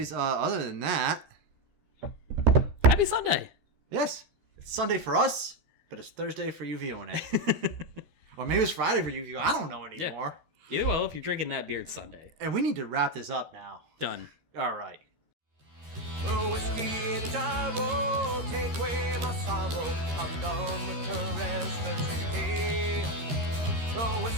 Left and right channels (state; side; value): late; left; 13 ms